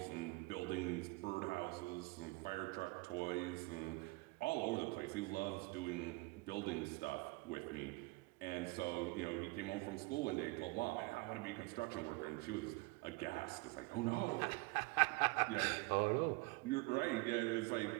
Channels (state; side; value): quieter; left; 24.6 dB